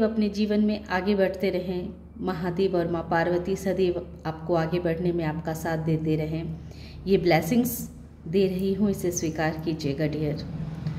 अपने जीवन में आगे बढ़ते रहें। महादेव और माँ पार्वती सदैव आपको आगे बढ़ने में आपका साथ देते रहें। ये ब्लेसिंग्स दे रही हूँ, इसे स्वीकार कीजिएगा डियर।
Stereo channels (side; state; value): both; identical; correlation 1.00